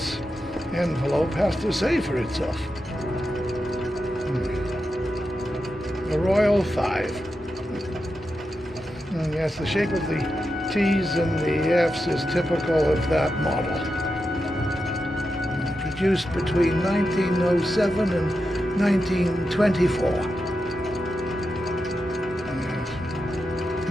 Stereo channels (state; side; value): normal; both; correlation 0.88